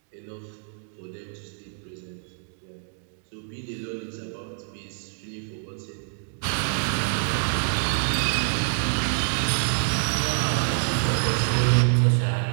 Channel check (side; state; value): left; silent; digital silence